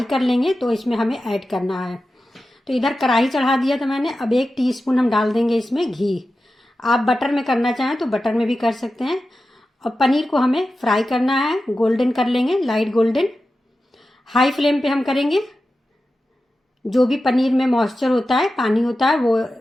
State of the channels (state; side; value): normal; both; correlation 0.93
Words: कर लेंगे तो इसमें हमें ऐड करना है। तो इधर कढ़ाई चढ़ा दिया था मैंने। अब 1 टीस्पून हम डाल देंगे इसमें घी। आप बटर में करना चाहें तो बटर में भी कर सकते हैं। और पनीर को हमें फ्राई करना है, गोल्डन कर लेंगे, लाइट गोल्डन। हाई फ्लेम पे हम करेंगे। जो भी पनीर में मॉइस्चर होता है, पानी होता है, वो